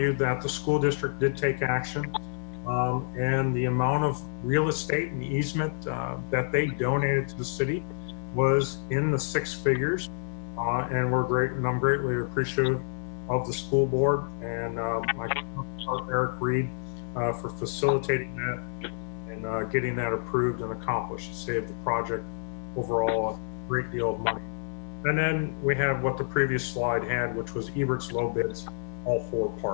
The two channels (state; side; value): silent; right; digital silence